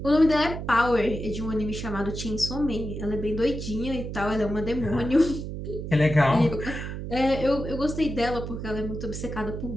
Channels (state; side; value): noise; right; hum, 7 dB below the sound